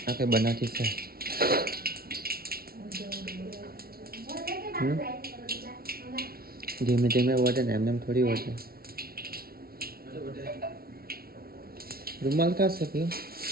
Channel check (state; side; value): late; left; 0.44 ms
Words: આ કઈ બનાતી છે. ધીમે ધીમે વધે ને એમને થોડી વધે. રૂમાલ કા છે પીવું?